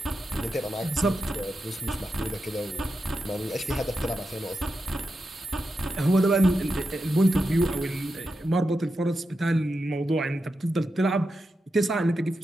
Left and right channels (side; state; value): both; normal; correlation 0.88